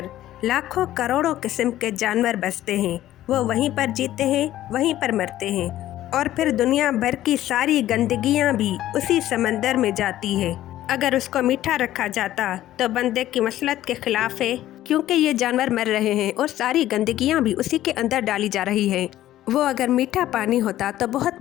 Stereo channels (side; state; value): right; quieter; 13.7 dB